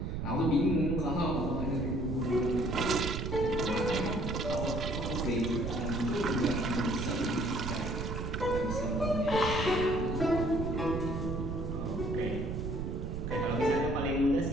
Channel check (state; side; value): noise; right; rumble, 3 dB below the sound